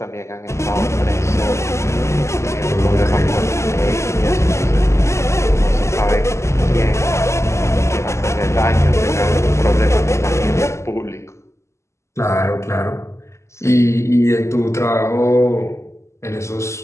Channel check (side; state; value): right; late; 0.13 ms